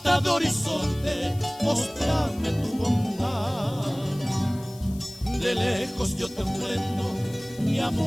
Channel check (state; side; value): noise; left; hiss, 21 dB below the sound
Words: de horizonte, mostrame tu bondad. De lejos yo te ofrendo mi